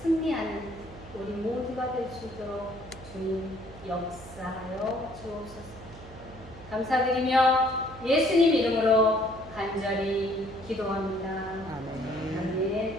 승리하는 우리 모두가 될 수 있도록 주님 역사하여 주옵소서. 감사드리며 예수님 이름으로 간절히 기도합니다.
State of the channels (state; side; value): noise; right; hum, 18 dB below the sound